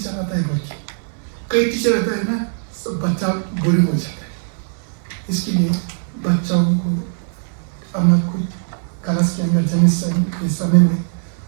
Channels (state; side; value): silent; left; digital silence